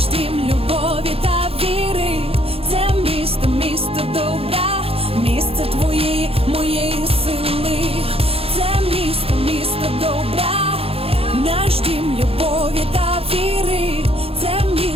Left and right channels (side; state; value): left; late; 0.28 ms